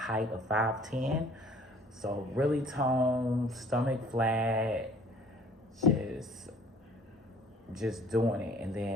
of 5'10". So really toned, stomach flat, just doing it. And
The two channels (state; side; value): normal; both; correlation 0.53